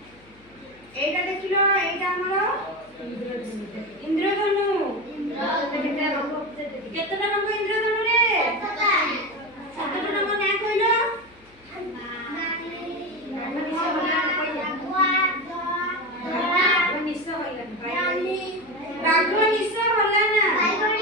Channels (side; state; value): left; noise; hum, 28 dB below the sound